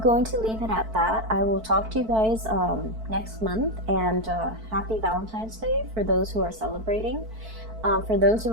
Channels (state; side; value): late; left; 4.5 ms